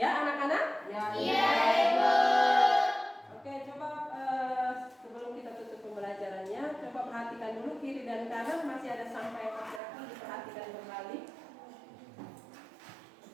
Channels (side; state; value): left; drops out; at 9.8 s